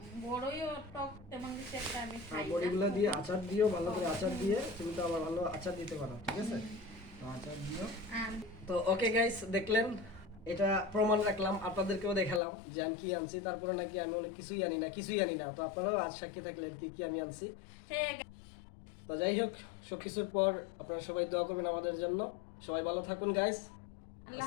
বড়ইও টক তেমন কিছু একটা আমি খাই না। বড়িগুলা দিয়ে আচার দিও, ভালো করে আচার দিয়ে। তুমি তো আবার ভালো আচার দিতে পারো, ঠিক আছে? তো আচার দিও। আর তো ওকে গাইস, দেখলেন, এটা প্রমাণ রাখলাম, আপনাদেরকেও দেখালাম যে আমি কি আনছি। তারপরে নাকি আমি অনেক কিছুই আনি না। তো আপনারাও আজ সাক্ষী থাকলেন কি কি আমি আনছি। তো যাই হোক, সবকিছুর পর আপনারা সবাই দোয়া করবেন আমাদের জন্য। সবাই ভালো থাকুন গাইস। আল্লাহ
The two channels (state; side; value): drops out; right; at 12.4 s